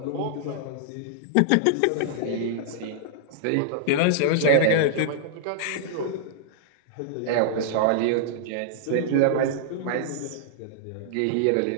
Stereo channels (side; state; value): both; different; correlation -0.01